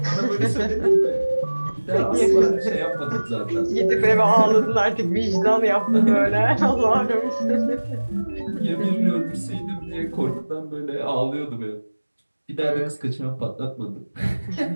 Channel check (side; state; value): both; inverted; correlation -1.00